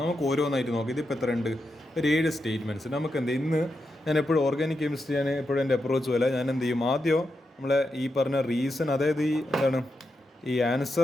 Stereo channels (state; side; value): normal; both; correlation 0.86